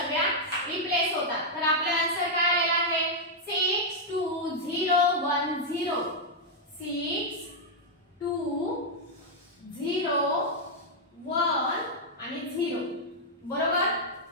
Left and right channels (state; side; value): normal; both; correlation -0.03